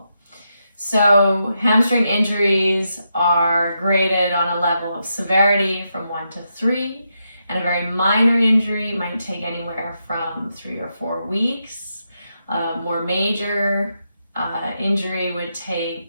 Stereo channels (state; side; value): inverted; both; correlation -0.83